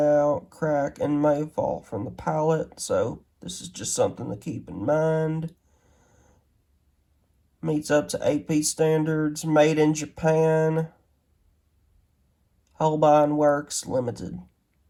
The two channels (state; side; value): identical; both; correlation 1.00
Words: out, crack, and may fall from the palette, so this is just something to keep in mind. Meets up to AP standards, made in Japan. Holbein Works Limited.